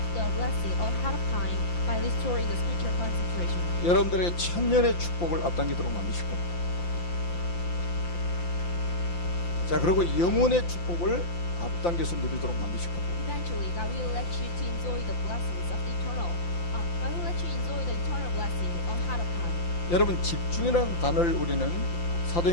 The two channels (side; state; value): right; late; 5.8 ms